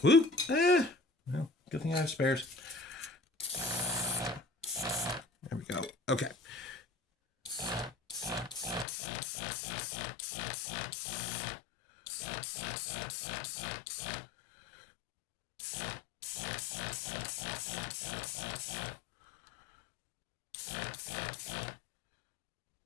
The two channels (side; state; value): right; drops out; at 8.8 s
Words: Whoop. Well, good thing I have spares. There we go. Okay.